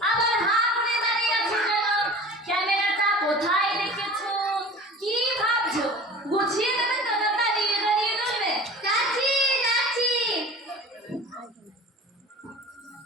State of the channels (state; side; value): normal; both; correlation 0.40